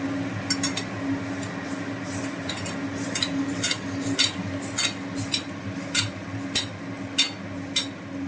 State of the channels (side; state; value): both; identical; correlation 1.00